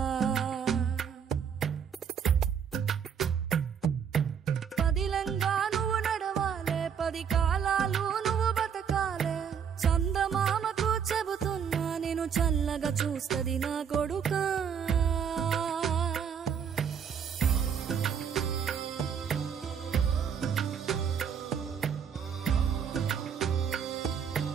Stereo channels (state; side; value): quieter; left; 7.5 dB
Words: పదిలంగా నువ్వు నడవాలే, 10 కాలాలు నువ్వు బతకాలే. చందమామకు చెబుతున్నా నేను చల్లగా చూస్తది నా కొడుకా.